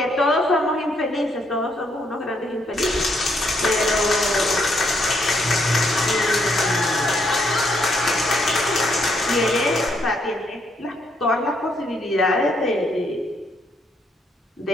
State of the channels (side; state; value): both; normal; correlation 0.73